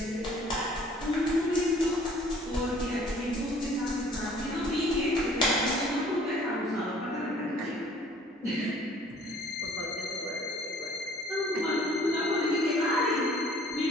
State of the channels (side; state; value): both; normal; correlation 0.54